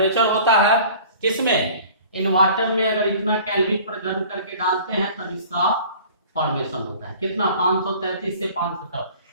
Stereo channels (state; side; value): inverted; both; correlation -0.46